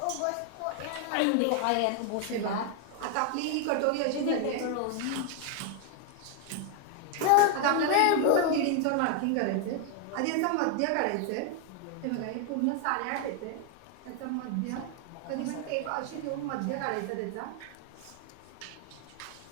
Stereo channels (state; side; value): different; both; correlation 0.00